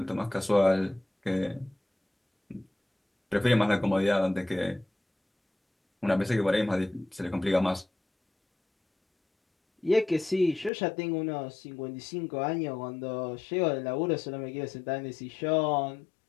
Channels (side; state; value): right; drops out; at 10.7 s